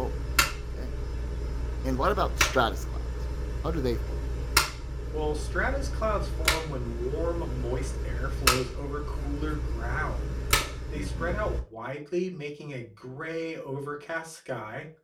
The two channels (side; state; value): both; identical; correlation 1.00